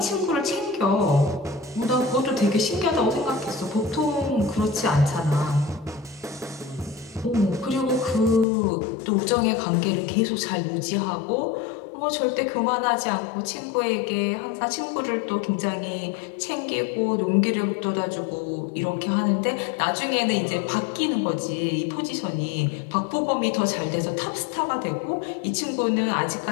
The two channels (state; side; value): drops out; right; at 8.5 s